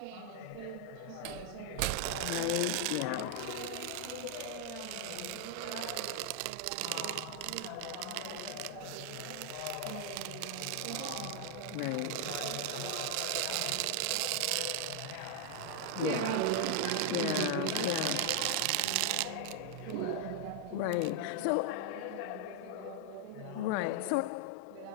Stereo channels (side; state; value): both; different; correlation 0.00